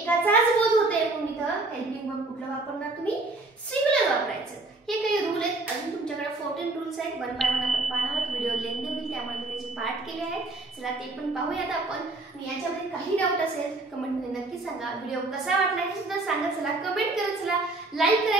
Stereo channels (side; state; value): left; quieter; 3.1 dB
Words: बोध होते, म्हणून इथं हेल्पिंग वर्ब कुठलं वापरणार तुम्ही? सिंग्युलर वापरायचं. हे काही रूल आहेत. अजून तुमच्याकडे 14 रूल्स आहेत. वन बाय वन आपण पाहणार आहोत. व्हिडिओ लेंदी होईल त्यामुळे मी त्याचे पाठ केले आहेत. चला ते पण पाहूयात आपण. आणि याच्यामध्ये काही डाऊट असेल कमेंटमध्ये नक्की सांगा. व्हिडिओ कसा वाटला हे सुद्धा सांगा. चला कमेंट करत चला. लाईक